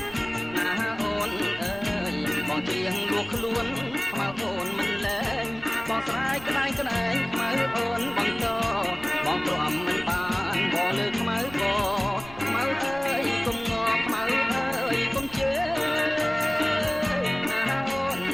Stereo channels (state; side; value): noise; right; rumble, 18 dB below the sound